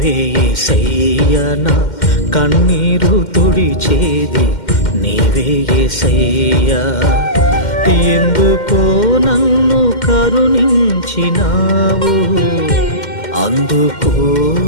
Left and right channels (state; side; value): late; right; 2.1 ms